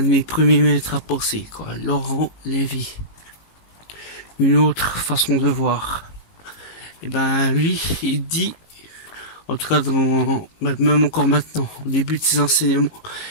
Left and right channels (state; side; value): late; right; 18 ms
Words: de mes premiers maîtres à penser, quoi. Laurent Lévy. Une autre façon de voir. Et ben lui, il dit, en tout cas même encore maintenant, au début de ses enseignements,